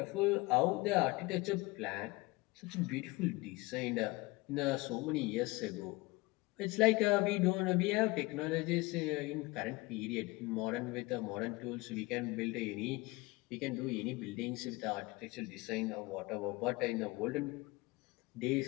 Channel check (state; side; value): quieter; right; 22.9 dB